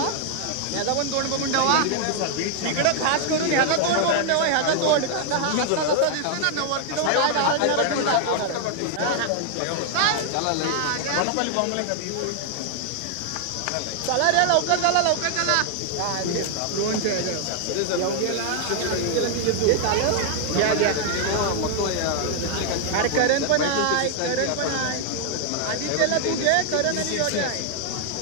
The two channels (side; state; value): both; different; correlation 0.00